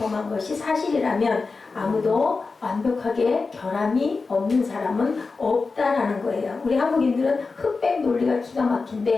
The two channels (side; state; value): right; quieter; 4.2 dB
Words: 것이 사실이라면 아무도 완벽하게 결함이 없는 사람은 없다라는 거예요. 우리 한국인들은 흑백 논리가 기가